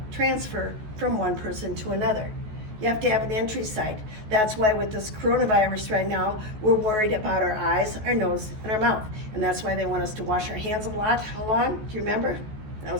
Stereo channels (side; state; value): left; late; 14 ms